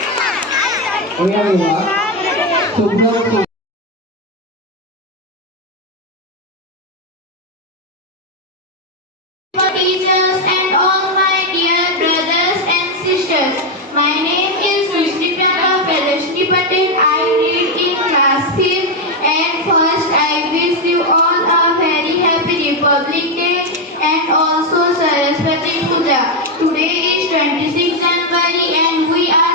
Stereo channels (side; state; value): both; normal; correlation 0.05